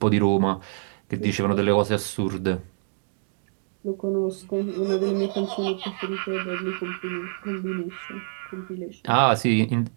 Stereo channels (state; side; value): silent; left; 61 dB below the other